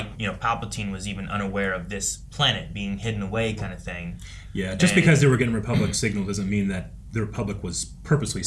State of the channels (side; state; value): both; identical; correlation 1.00